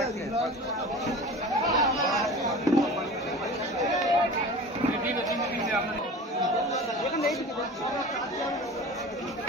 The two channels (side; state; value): both; normal; correlation 0.36